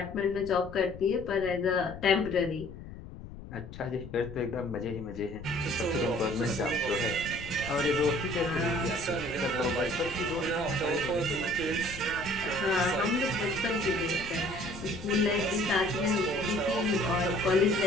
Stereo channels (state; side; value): noise; left; rumble, 13 dB below the sound